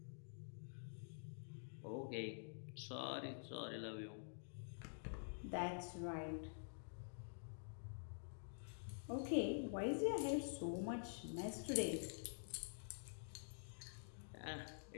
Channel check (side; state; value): right; silent; digital silence